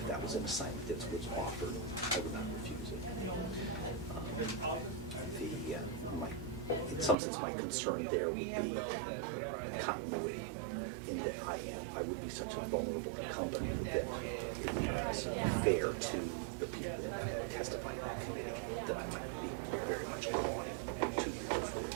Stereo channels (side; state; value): left; drops out; at 7.2 s